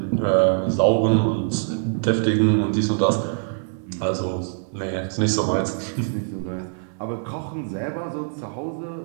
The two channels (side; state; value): left; silent; 63 dB below the other